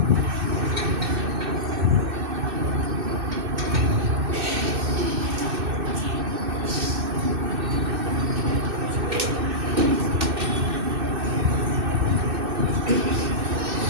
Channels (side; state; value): left; late; 2.6 ms